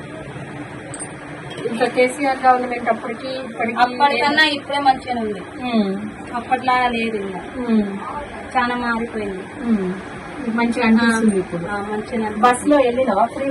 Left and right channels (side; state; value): both; identical; correlation 1.00